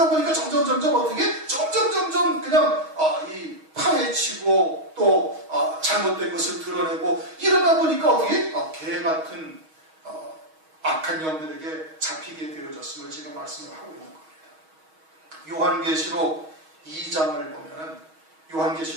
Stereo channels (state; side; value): late; left; 6.3 ms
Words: 보니까 점점 어떻게 점점 그냥 파헤치고 또 잘못된 것을 드러내고 이러다 보니까 어떻게 개 같은 악한 영들에게 잡히게 되어졌음을 지금 말씀을 하고 있는 겁니다. 요한계시록 2장을 보면은